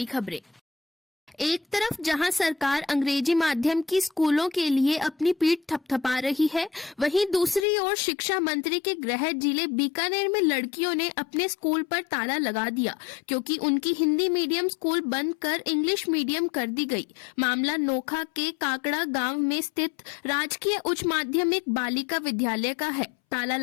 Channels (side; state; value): right; drops out; at 7.7 s